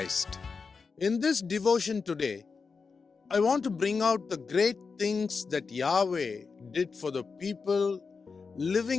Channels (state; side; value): quieter; right; 4.9 dB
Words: In this devotion today, I want to bring out the great things that Yahweh did for the people